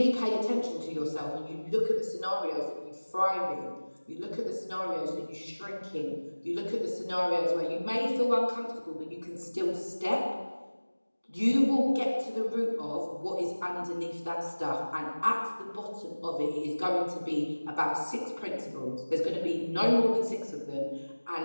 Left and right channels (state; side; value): inverted; both; correlation -1.00